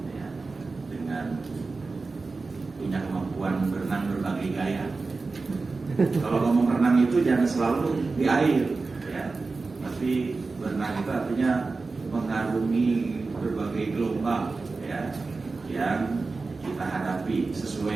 ya, dengan punya kemampuan berenang berbagai gaya. Kalau ngomong renang itu jangan selalu di air ya, tapi berenang itu artinya mengarungi berbagai gelombang ya, yang kita hadapi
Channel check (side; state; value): left; quieter; 3.9 dB